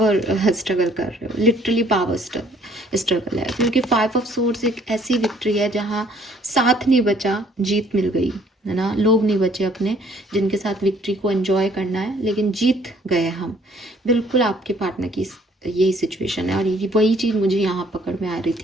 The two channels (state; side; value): normal; both; correlation 0.61